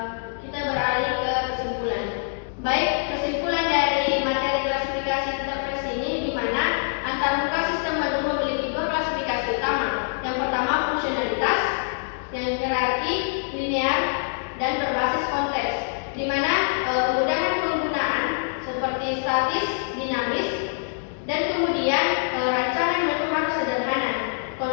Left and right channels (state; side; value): silent; right; digital silence